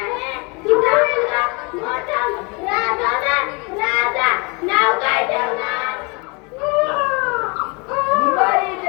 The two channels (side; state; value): right; quieter; 30.1 dB